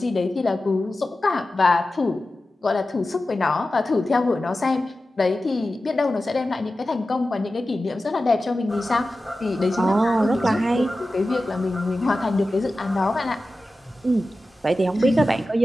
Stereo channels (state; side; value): normal; both; correlation 0.94